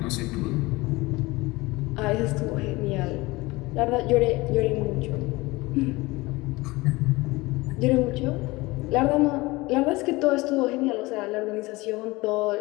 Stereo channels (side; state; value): right; quieter; 21.8 dB